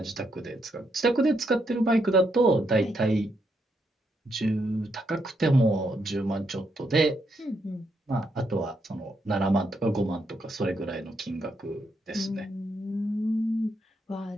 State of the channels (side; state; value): both; normal; correlation 0.78